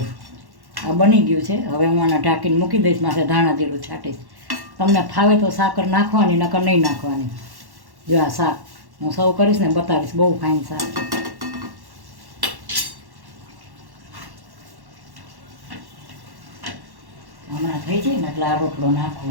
આ બની ગયું છે. હવે હું આને ઢાંકીને મૂકી દઈશ. માથે ધાણા જીરું છાંટીશ. તમને ફાવે તો સાકર નાખવાની, નકર નહીં નાખવાની. જો આ શાક હું સર્વ કરીશ ને બતાવીશ. બહુ ફાઇન શાક છે. હમણાં થઈ જાય ને એટલે આ રોટલો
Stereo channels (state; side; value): late; left; 1.1 ms